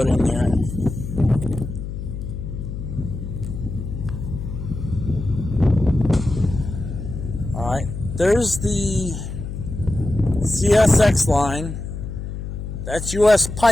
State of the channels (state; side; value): noise; left; hum, 7 dB below the sound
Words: in there. Alright. There's the CSX line. That's US